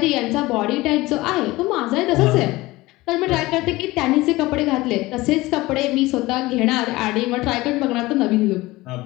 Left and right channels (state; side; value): quieter; right; 19.8 dB